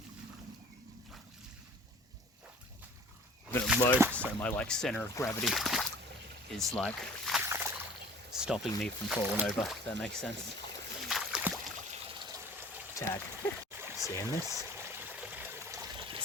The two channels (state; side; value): normal; both; correlation 0.47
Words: A bit of low, so my like center of gravity is like stopping me from falling over, if that makes sense. Tag. Seeing this?